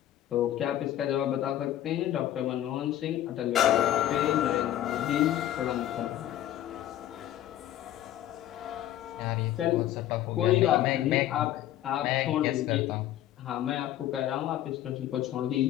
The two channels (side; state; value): right; quieter; 12.6 dB